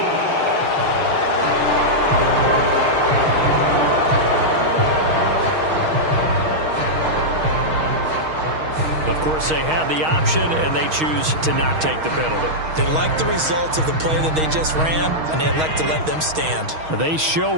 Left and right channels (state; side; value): late; left; 6.4 ms